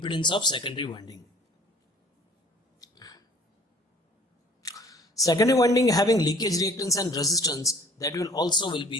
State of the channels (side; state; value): both; normal; correlation 0.52